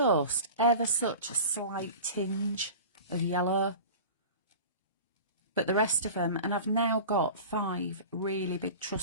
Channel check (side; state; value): both; inverted; correlation -0.36